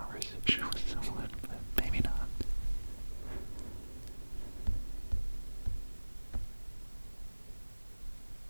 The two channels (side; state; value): both; inverted; correlation -1.00